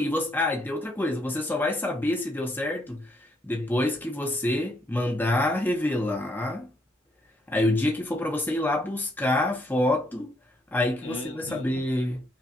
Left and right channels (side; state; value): both; normal; correlation 0.73